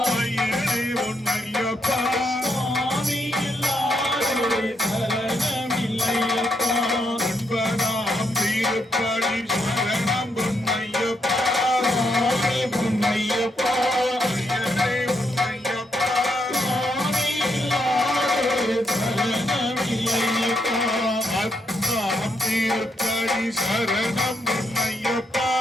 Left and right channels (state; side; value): normal; both; correlation 0.79